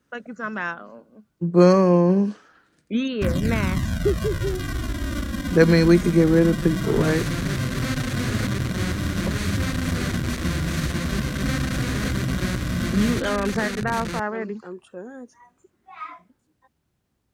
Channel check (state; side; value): identical; both; correlation 1.00